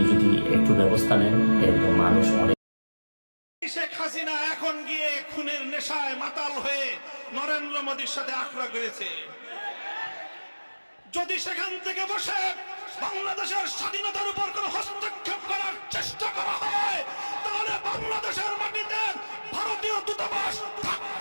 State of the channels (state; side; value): inverted; both; correlation -1.00